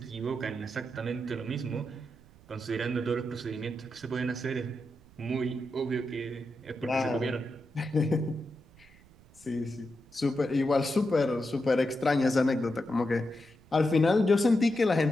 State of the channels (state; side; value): noise; right; rumble, 26 dB below the sound